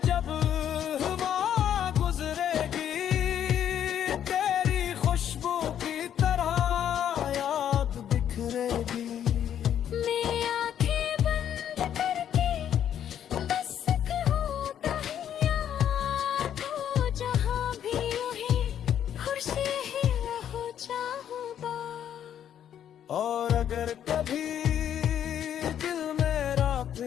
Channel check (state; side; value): quieter; right; 9.8 dB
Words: जब अगर कभी दिल मेरा